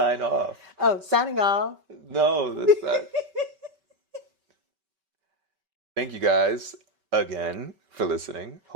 off. Oh, signing off. No, that's not. Thank you guys again for listening.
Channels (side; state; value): left; late; 5.2 ms